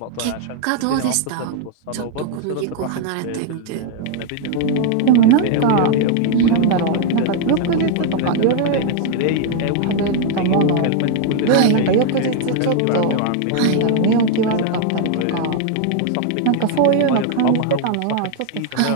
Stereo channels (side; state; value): both; different; correlation 0.00